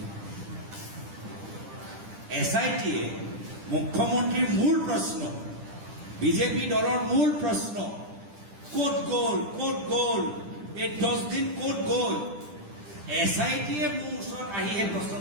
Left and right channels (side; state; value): left; late; 10 ms